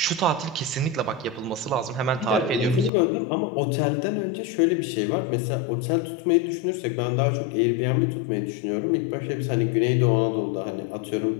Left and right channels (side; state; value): right; drops out; at 2.9 s